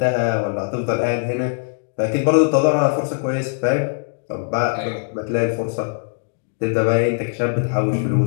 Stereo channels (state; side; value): silent; right; digital silence